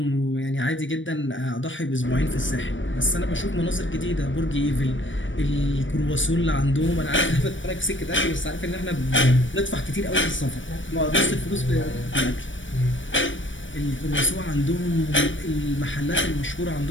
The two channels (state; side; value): late; right; 0.56 ms